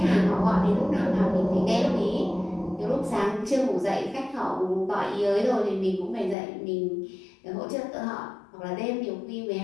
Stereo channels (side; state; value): right; drops out; at 6.4 s